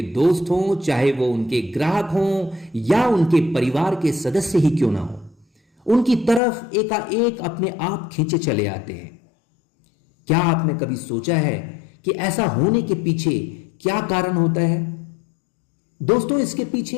दोस्त हों, चाहे वो उनके ग्राहक हों या उनके परिवार के सदस्य ही क्यों ना हो, उनकी तरफ एकाएक अपने आप खींचे चले आते हैं। क्या आपने कभी सोचा है कि ऐसा होने के पीछे क्या कारण होता है? दोस्तों, इसके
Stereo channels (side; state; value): right; drops out; at 6.4 s